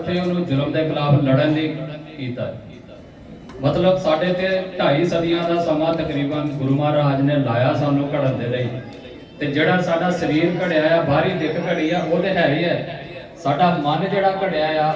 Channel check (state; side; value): identical; both; correlation 1.00